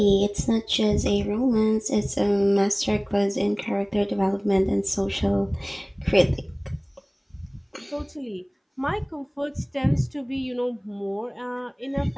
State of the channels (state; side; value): identical; both; correlation 1.00